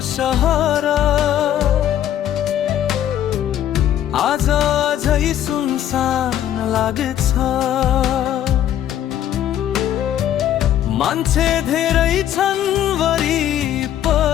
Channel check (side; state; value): right; quieter; 11.2 dB